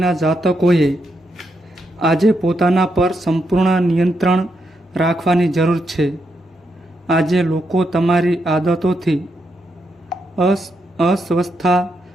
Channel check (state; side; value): normal; both; correlation 0.82